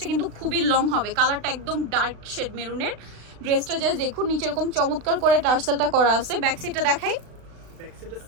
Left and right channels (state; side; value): late; left; 36 ms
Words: কিন্তু খুবই লং হবে, কালারটা একদম ডার্ক শেড মেরুনের। ড্রেসটা জাস্ট দেখুন, নিচে এরকম চমৎকার করে টার্সেলটা করা আছে। ব্যাক সাইডটা দেখাই,